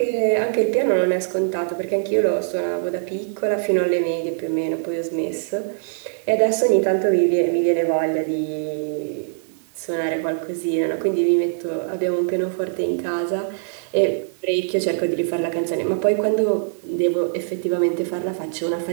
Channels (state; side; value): silent; left; digital silence